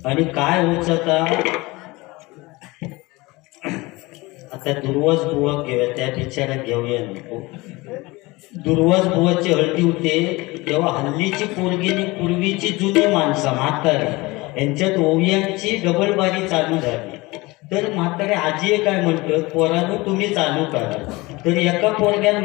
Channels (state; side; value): quieter; right; 22.5 dB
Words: आणि काय होत आता दुर्वास बुवा घेऊया, त्या बिचारा घेऊया नको. दुर्वास बुवाची हळदी होते तेव्हा हल्लीची पोरगीनी पूर्वीची जुनी माणसं म्हातारी यांच्यात ओवियांची डबलबारी चालू झाली. तर म्हातारे आजी काय म्हणतात, पोरांनो तुम्ही चालू करा. तर एका पोरग्यानं